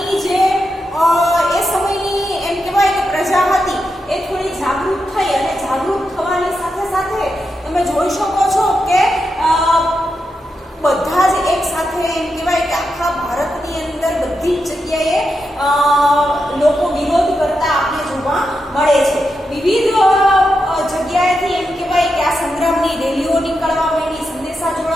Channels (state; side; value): normal; both; correlation 0.86